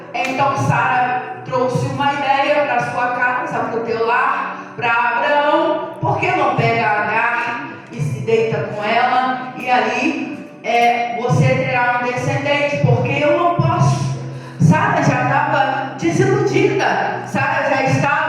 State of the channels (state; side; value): identical; both; correlation 1.00